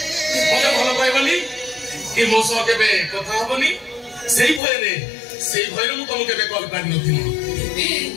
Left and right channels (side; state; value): right; drops out; at 4.6 s